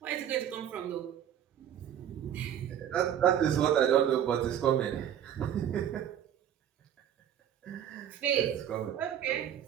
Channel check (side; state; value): left; quieter; 9.9 dB